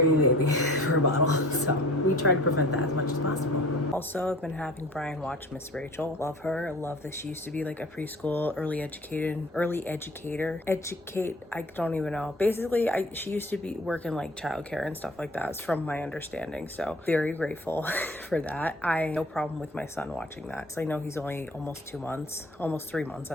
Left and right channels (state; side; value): normal; both; correlation 0.46